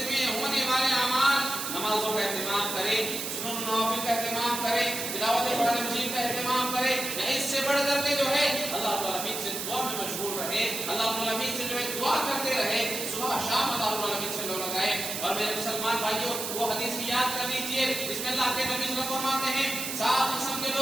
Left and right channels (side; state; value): right; noise; hiss, 4 dB below the sound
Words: میں ہونے والے اعمال، نمازوں کا اہتمام کرے، سنن نوافل کا اہتمام کرے، تلاوت قرآن مجید کا اہتمام کرے. اس سے بڑھ کر کے جو ہے اللہ رب العالمین سے دعا میں مشغول رہے، اللہ رب العالمین سے جو ہے دعا کرتے رہے، صبح شام اللہ رب العالمین سے لو لگائے. اور میرے مسلمان بھائیوں وہ حدیث کی یاد کر لیجیے جس میں اللہ کے نبی صلی اللہ علیہ وسلم فرماتے ہیں 7 قسم کے